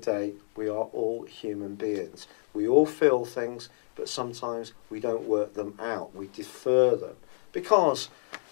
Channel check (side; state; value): right; silent; digital silence